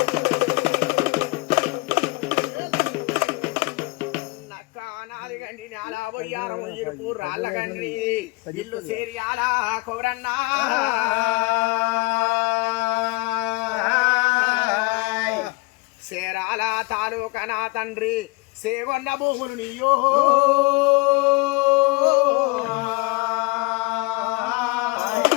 గండి నాలా బొయ్యారం ఇరుపు రాళ్ళ గండి ఇల్లు సేరియాలా కొరన్నా సేరాల తాలూకా నా తండ్రి సేగొన్న భూములు నీయో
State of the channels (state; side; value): quieter; right; 24.8 dB